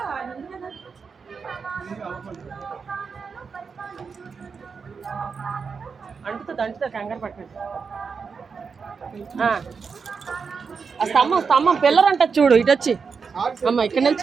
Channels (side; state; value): left; quieter; 5.5 dB